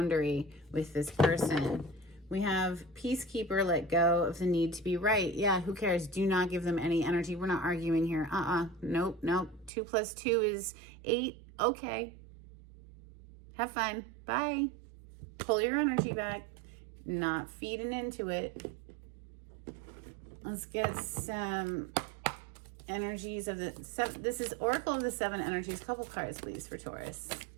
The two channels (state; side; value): drops out; left; at 9.7 s